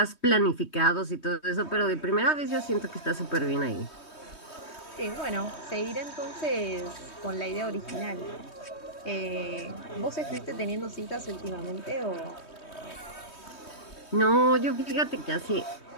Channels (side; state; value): right; late; 3.2 ms